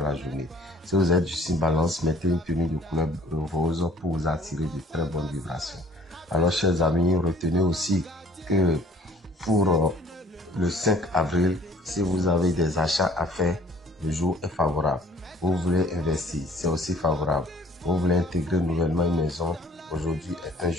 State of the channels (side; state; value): both; normal; correlation 0.54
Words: la journée. Si vous êtes du signe balance, mettez une tenue de couleur rose pour vous attirer de très bonnes vibrations. Alors, chers amis, retenez aussi que pour le 5 avril, si vous avez des achats à faire, le jour est favorable. Vous voulez investir, c'est aussi favorable. Vous voulez intégrer nouvellement une maison, aujourd'hui est un